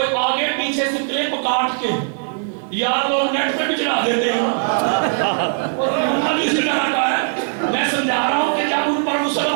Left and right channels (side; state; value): left; silent; 64 dB below the other